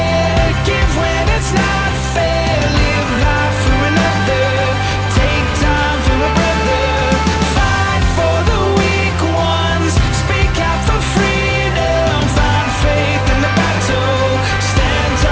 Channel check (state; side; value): identical; both; correlation 1.00